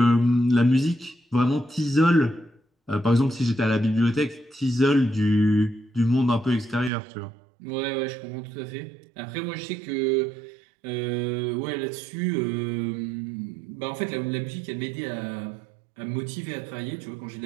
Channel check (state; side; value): drops out; left; at 6.9 s